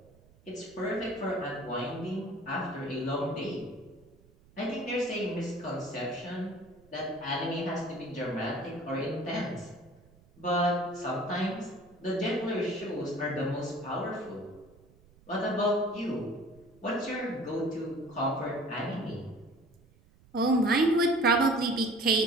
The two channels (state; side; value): noise; right; rumble, 27 dB below the sound